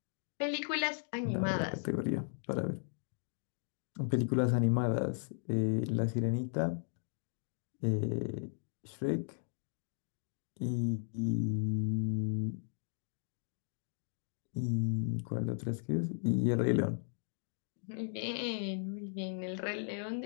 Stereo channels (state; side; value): silent; right; digital silence